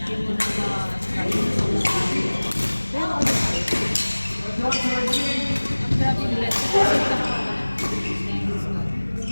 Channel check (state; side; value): inverted; both; correlation -1.00